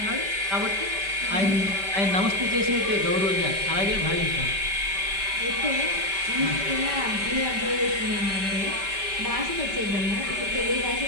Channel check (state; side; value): late; left; 5.1 ms